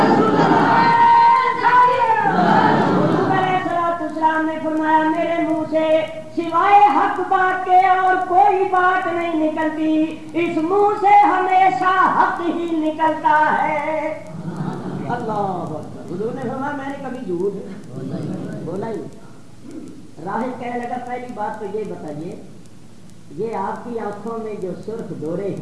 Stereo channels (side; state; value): both; identical; correlation 1.00